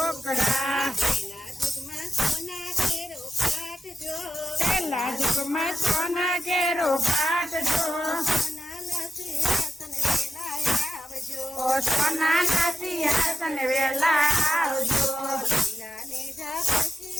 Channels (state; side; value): normal; both; correlation 0.89